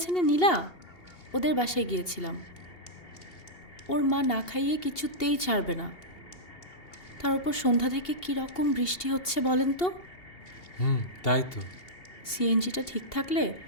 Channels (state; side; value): late; right; 2.8 ms